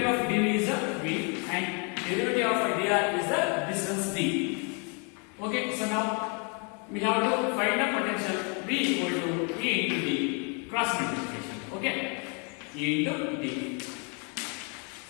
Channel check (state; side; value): quieter; right; 36.0 dB